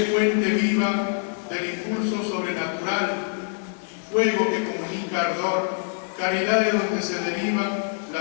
fuente viva del impulso sobrenatural, fuego que comunica ardor, caridad de donde se deriva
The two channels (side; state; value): right; silent; 60 dB below the other